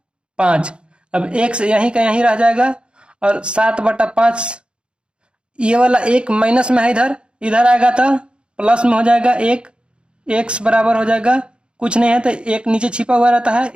अब x यहीं का यहीं रह जाएगा, और 7/5 ये वाला एक माइनस में है, इधर इधर आएगा तो प्लस में हो जाएगा 1। x बराबर हो जाएगा, कुछ नहीं है तो एक नीचे छिपा हुआ रहता है,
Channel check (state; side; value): late; left; 0.055 ms